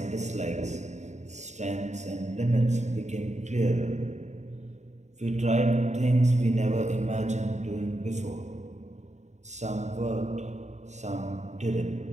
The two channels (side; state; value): left; late; 0.34 ms